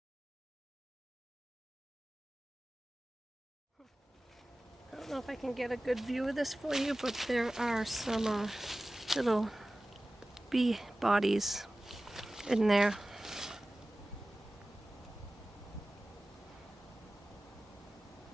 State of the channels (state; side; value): normal; both; correlation 0.97